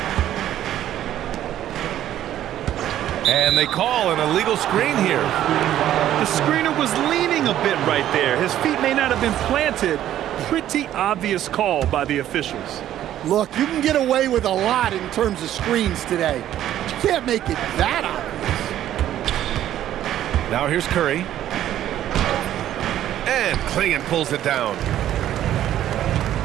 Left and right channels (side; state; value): left; quieter; 12.0 dB